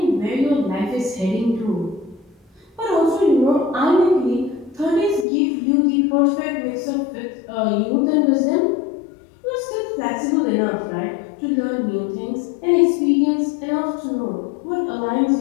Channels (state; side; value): drops out; right; at 5.2 s